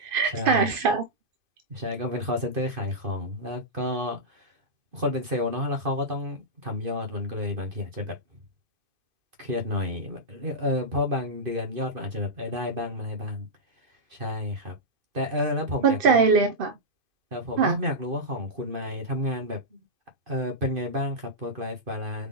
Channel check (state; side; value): late; left; 2.5 ms